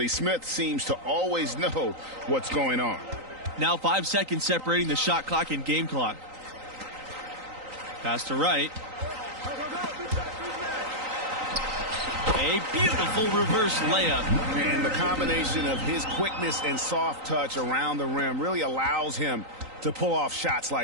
Smith seems to always know what's going on. Now 5 seconds separating the shot clock and game clock. Pass to Wright. A beautiful reverse layup. And the combination of his quickness and soft touch around the rim really allows him to pull off shots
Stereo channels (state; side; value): late; left; 3.9 ms